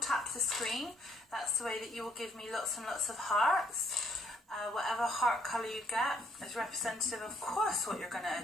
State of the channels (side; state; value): both; normal; correlation 0.67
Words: the screen, that's the way that you will give me lots and lots of hearts. Whatever heart colour you get is representative, of course, what you're going to